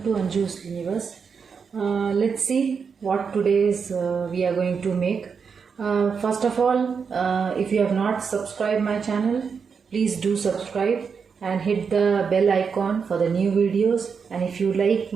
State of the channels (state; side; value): quieter; left; 6.0 dB